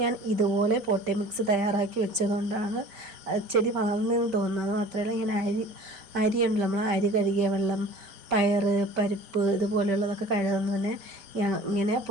ഞാൻ ഇതുപോലെ പോട്ടി മിക്സ് തയ്യാറാക്കി വെച്ചതുകൊണ്ടാണ് ചെടി വളർന്നതെന്ന് തോന്നുന്നത്. മാത്രമല്ല ഇങ്ങനെ അരിയുണ്ടല്ലോ, നമ്മൾ അരി കഴുകിയ വെള്ളം, പയറ്, പരിപ്പ് ഇതുപോലെയുള്ളതൊക്കെ കഴുകുന്നതിന് ഞാൻ ഇങ്ങനെ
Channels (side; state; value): left; late; 4.7 ms